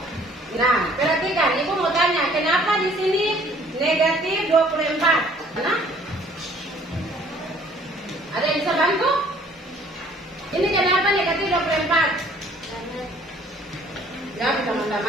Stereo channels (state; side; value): normal; both; correlation 0.57